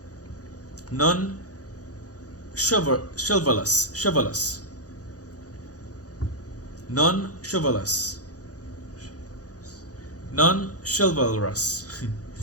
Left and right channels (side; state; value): right; late; 0.67 ms